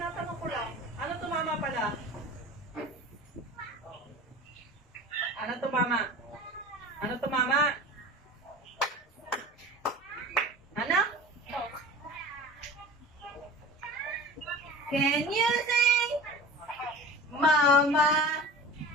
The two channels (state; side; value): normal; both; correlation 0.37